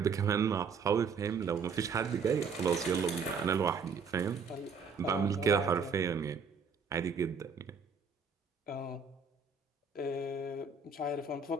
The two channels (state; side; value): quieter; left; 5.3 dB